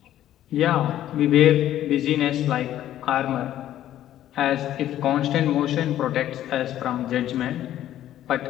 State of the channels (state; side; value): quieter; right; 12.4 dB